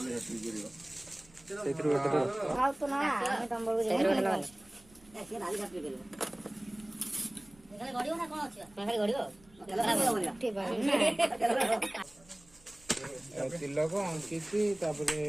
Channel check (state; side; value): noise; right; rumble, 27 dB below the sound